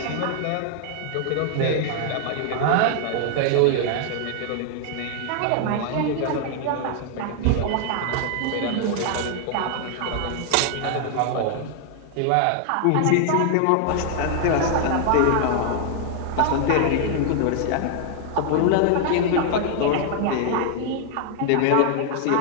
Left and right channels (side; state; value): both; different; correlation 0.00